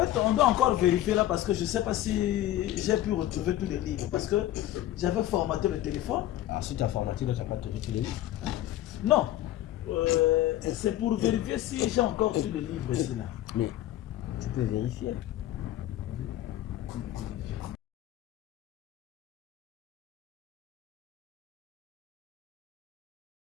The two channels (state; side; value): quieter; right; 13.7 dB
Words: on doit encore vérifier là parce que je ne sais pas si j'ai pu retrouver tous les livres. Parce que j'avais formaté le téléphone. Ah, si tu as formaté, tu n'as pas trouvé tous les livres. Non. C'est pour vérifier si j'ai encore tous les livres ici là. Mais tu peux vérifier.